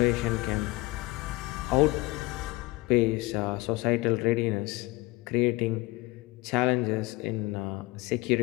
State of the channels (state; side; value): quieter; right; 20.9 dB